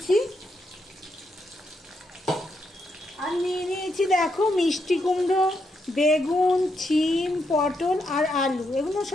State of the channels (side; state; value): both; normal; correlation 0.80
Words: আর নিয়ে নিয়েছি দেখো মিষ্টি কুমড়ো, বেগুন, শিম, পটল আর আলু, এগুলো